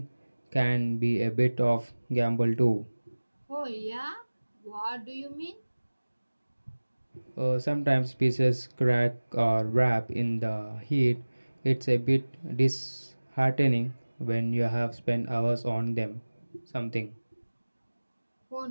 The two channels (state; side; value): inverted; both; correlation -1.00